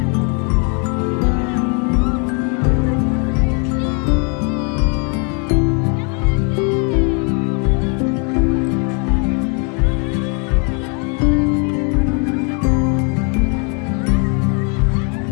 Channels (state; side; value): quieter; right; 36.8 dB